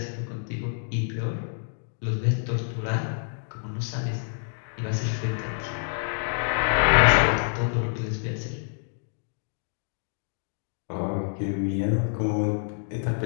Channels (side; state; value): right; silent; digital silence